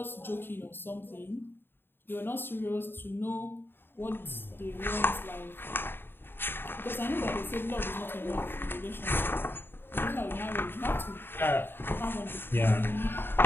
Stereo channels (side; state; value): right; late; 0.10 ms